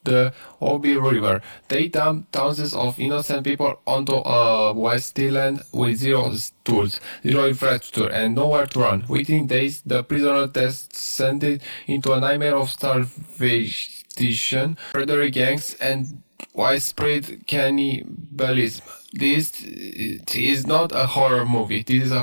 the Obi River. They dumped thousands of innocent people onto a wasteland with zero tools, zero infrastructure, and nowhere to run. Within days, the prisoner descended into a nightmare of starvation, predatory gangs, and widespread cannibalism. This is not a horror movie. This is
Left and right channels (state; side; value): inverted; both; correlation -1.00